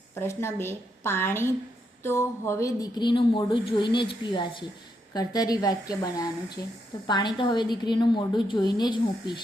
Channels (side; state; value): both; normal; correlation 0.80